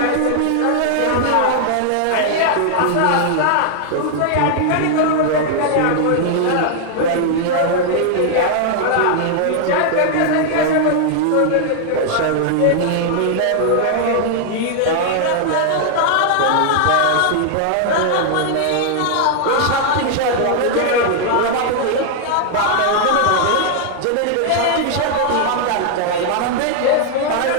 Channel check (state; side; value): different; both; correlation 0.00